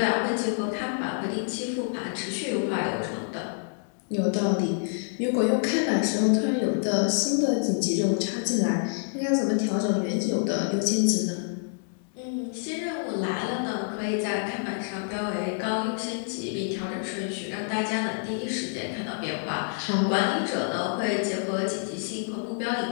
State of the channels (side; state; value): right; silent; digital silence